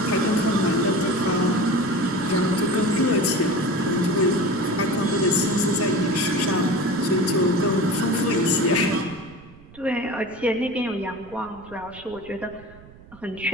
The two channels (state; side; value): noise; right; rumble, 21 dB below the sound